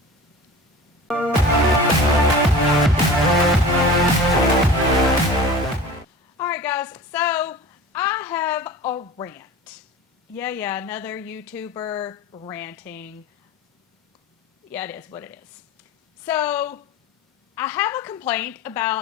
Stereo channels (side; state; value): both; normal; correlation 0.37